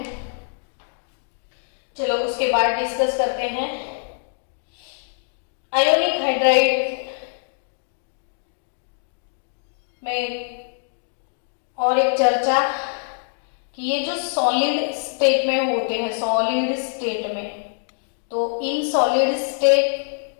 चलो उसके बाद डिस्कस करते हैं आयोनिक हाइड्राइड में और एक चर्चा कि ये जो सॉलिड स्टेट में होते हैं, सॉलिड स्टेट में, तो in solid state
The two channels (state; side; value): silent; right; digital silence